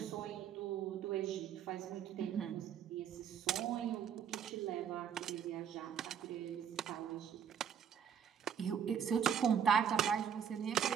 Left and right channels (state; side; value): quieter; left; 8.2 dB